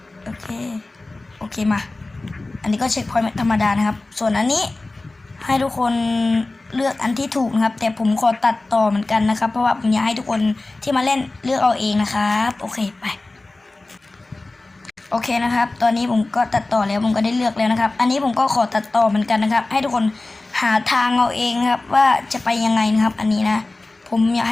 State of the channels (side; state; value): right; quieter; 3.1 dB